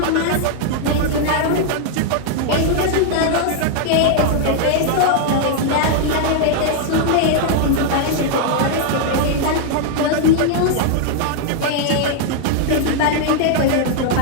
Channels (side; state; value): both; different; correlation 0.00